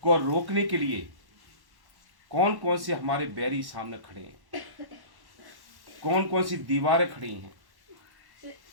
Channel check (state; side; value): late; left; 1.1 ms